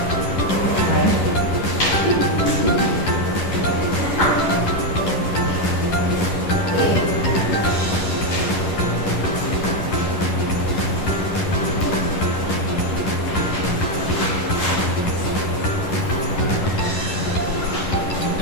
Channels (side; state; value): right; late; 11 ms